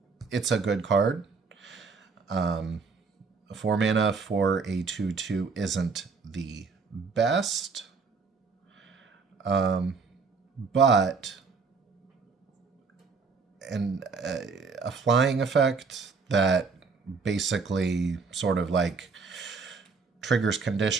It's a good card. 4 mana for a 2/2 isn't the best. But a flying effect that basically sort of like triggers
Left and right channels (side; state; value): left; quieter; 4.8 dB